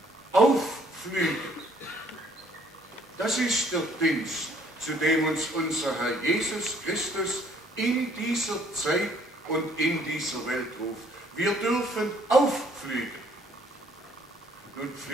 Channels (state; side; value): normal; both; correlation 0.62